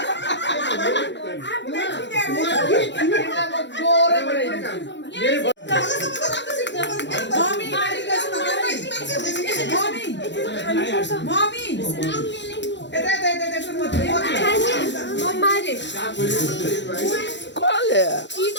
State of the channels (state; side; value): late; right; 0.52 ms